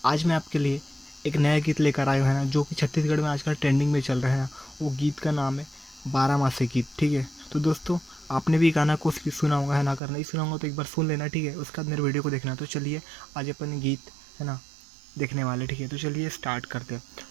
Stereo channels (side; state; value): left; drops out; at 10.0 s